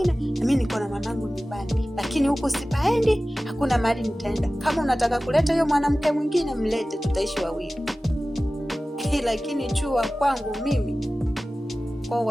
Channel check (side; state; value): both; normal; correlation 0.96